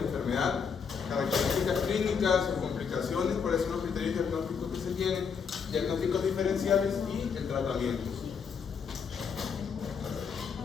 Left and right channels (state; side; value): quieter; right; 6.3 dB